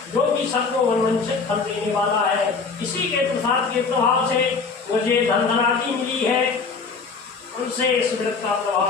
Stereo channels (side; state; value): right; quieter; 4.8 dB